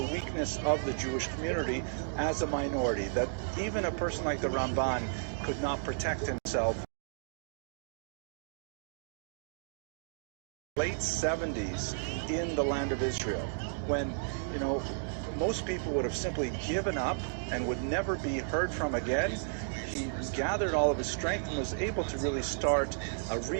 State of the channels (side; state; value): left; silent; digital silence